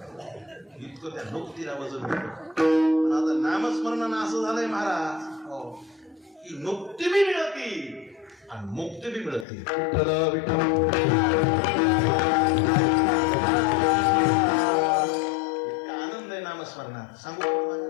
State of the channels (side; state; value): right; drops out; at 9.5 s